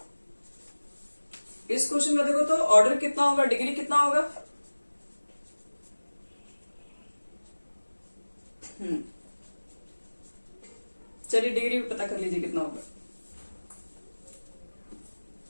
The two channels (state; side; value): inverted; both; correlation -1.00